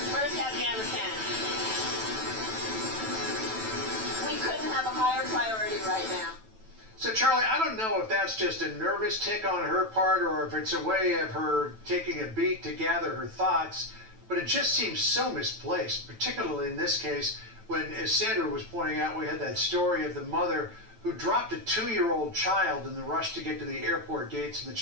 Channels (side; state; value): left; late; 9.1 ms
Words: First, Afghanistan. We couldn't have a higher priority right now. So, Charlie, I don't know if that's just a nervous tick on her part or if it's a way of her taking a beat to gather her thoughts, but it just seems so misplaced, particularly in this case when, as Sandra was pointing out, we had that story of the mother who dropped a 2-year-old child in the rush to get to the airport gates, and the